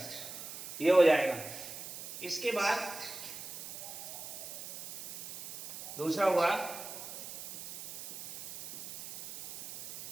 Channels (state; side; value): noise; right; hiss, 10 dB below the sound